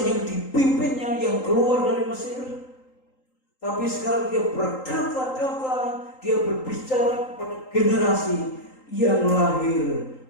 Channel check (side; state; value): right; late; 3.8 ms